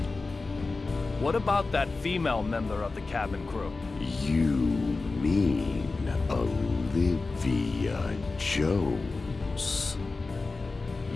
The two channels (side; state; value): right; quieter; 3.7 dB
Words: What about that female member of the cabin crew? You mean Olivia Jones?